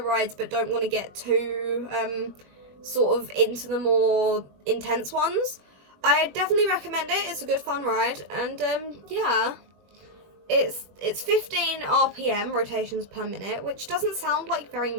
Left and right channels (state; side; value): late; left; 21 ms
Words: but don't want to get too, sort of into the more intense ones. I definitely recommend it. It's a good fun ride, and yeah, it's 15 RPM rotations per minute, which doesn't sound like very